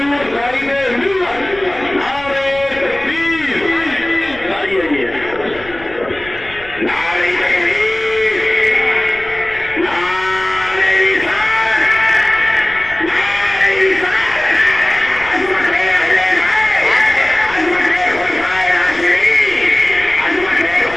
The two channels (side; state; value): left; noise; rumble, 19 dB below the sound